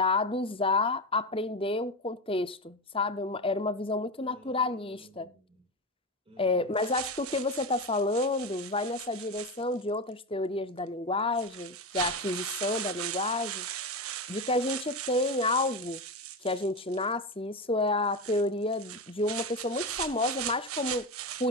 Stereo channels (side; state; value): both; normal; correlation 0.18